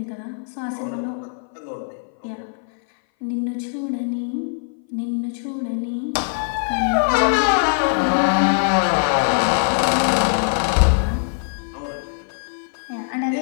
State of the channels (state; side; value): silent; right; 59 dB below the other